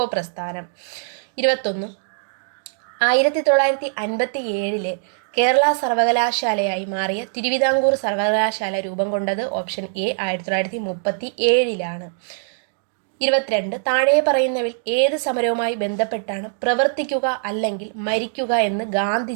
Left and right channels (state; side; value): silent; left; digital silence